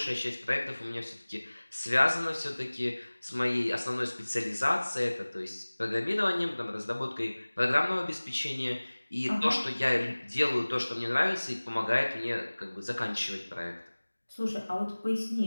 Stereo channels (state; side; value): inverted; both; correlation -1.00